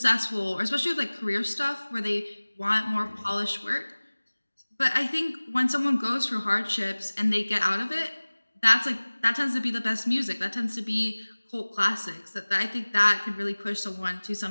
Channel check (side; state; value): both; inverted; correlation -1.00